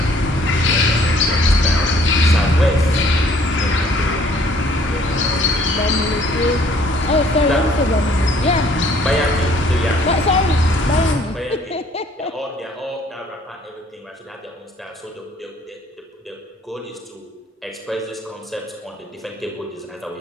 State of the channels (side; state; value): both; normal; correlation 0.59